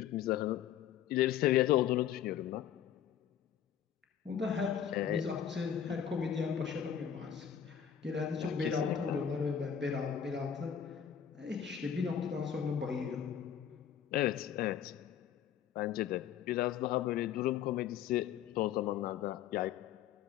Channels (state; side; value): quieter; right; 9.1 dB